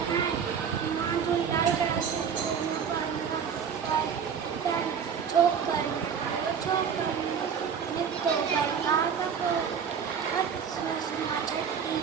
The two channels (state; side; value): quieter; left; 7.1 dB